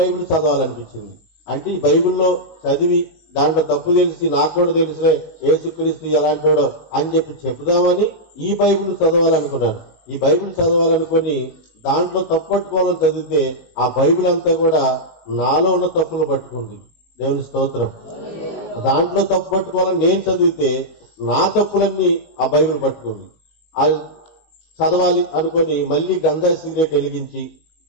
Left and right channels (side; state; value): right; late; 19 ms